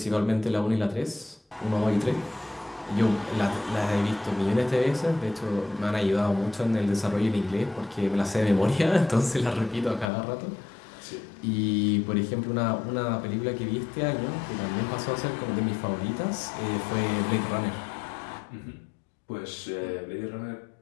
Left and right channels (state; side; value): drops out; right; at 10.1 s